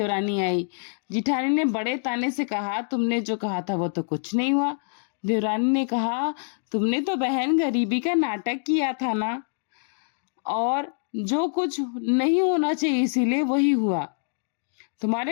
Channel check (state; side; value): silent; right; digital silence